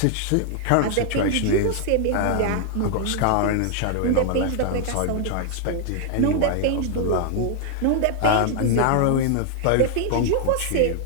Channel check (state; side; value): different; both; correlation 0.00